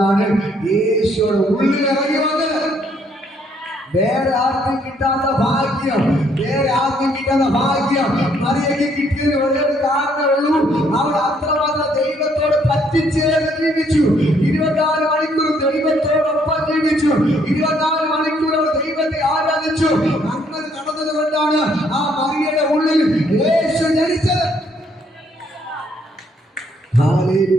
യേശുവിടെ ഉള്ളിൽ ഇറങ്ങി വന്നത്. വേറെ ആർക്കും കിട്ടാത്ത ഭാഗ്യം, മറിയയ്ക്ക് കിട്ടിയത് ഒരേ കാരണമുള്ളൂ. അവൾ അത്രമാത്രം ദൈവത്തോട് പറ്റിച്ചേർന്ന് ജീവിച്ചു. 24 മണിക്കൂർ ദൈവത്തോടൊപ്പം ജീവിച്ചു. 24 മണിക്കൂർ അവൾ ദൈവത്തെ ആരാധിച്ചു. അങ്ങനെ നടന്നത് കൊണ്ടാണ് ആ മറിയയുടെ ഉള്ളിൽ യേശു ജനിച്ചത്.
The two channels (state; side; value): normal; both; correlation 0.68